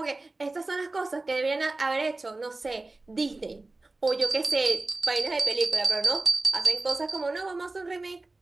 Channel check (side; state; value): left; quieter; 3.2 dB